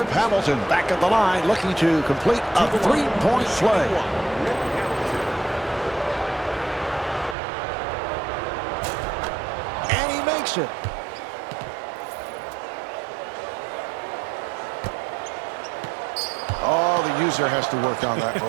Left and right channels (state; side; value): drops out; left; at 7.4 s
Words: Hamilton back at the line looking to complete a three-point play. And he makes it. Oh, the user has to work on that